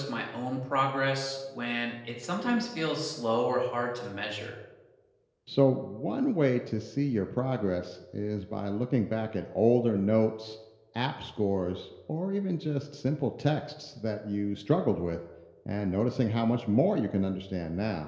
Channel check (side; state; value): both; identical; correlation 1.00